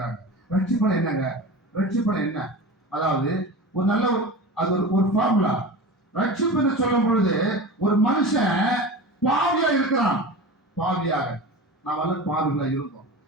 ரட்சிப்பனை என்னங்க, ரட்சிப்பனை என்ன? அதாவது ஒரு நல்ல அது ஒரு ஃபார்முலா. ரட்சிப்பு சொல்லும் பொழுது ஒரு மனுஷன் பாவியா இருக்கிறான், பாவியாக நாம் எல்லாம் பாவிகளா இருந்தோம்.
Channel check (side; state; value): both; normal; correlation 0.31